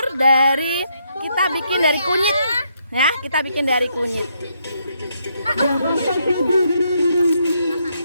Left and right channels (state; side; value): inverted; both; correlation -0.76